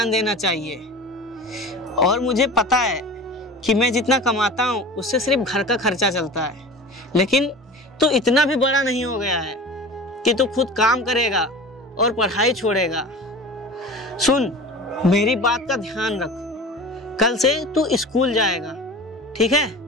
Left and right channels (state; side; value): normal; both; correlation 0.36